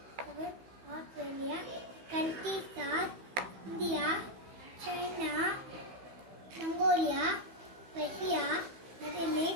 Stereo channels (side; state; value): left; late; 15 ms